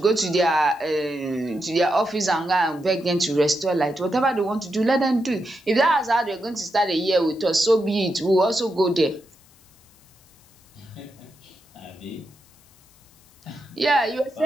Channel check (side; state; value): left; noise; hiss, 29 dB below the sound